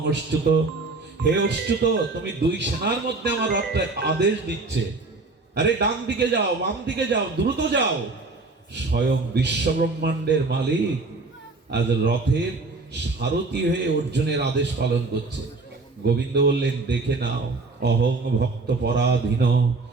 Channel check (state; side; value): quieter; left; 3.6 dB